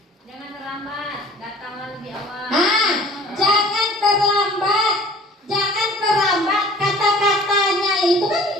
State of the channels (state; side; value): normal; both; correlation 0.48